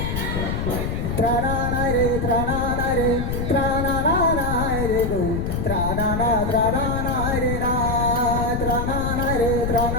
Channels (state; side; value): noise; left; rumble, 2 dB below the sound